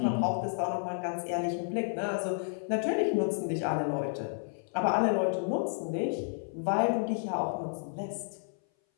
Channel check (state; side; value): silent; right; 57 dB below the other